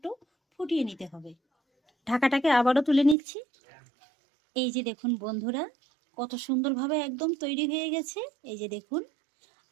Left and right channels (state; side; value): drops out; left; at 3.2 s